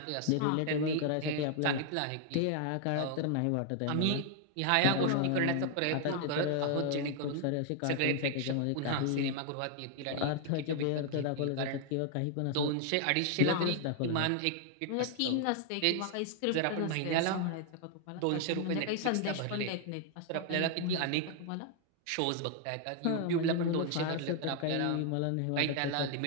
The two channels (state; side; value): different; both; correlation 0.00